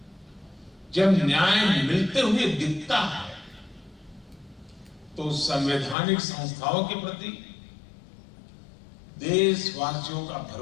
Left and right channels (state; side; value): drops out; right; at 6.0 s